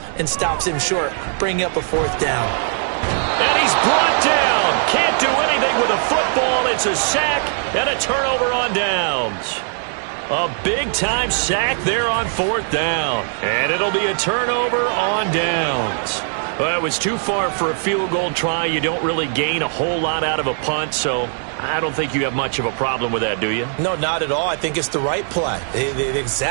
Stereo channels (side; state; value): left; silent; 66 dB below the other